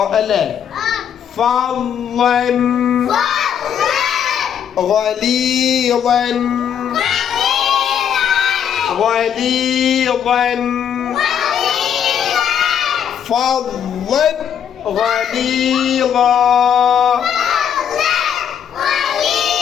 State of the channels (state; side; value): quieter; right; 8.7 dB